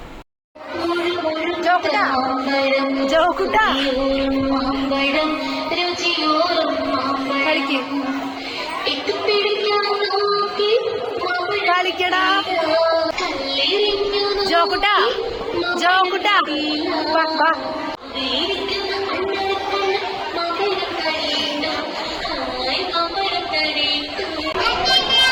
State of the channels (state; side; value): identical; both; correlation 1.00